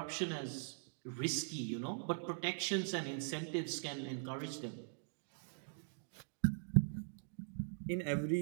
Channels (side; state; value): left; silent; digital silence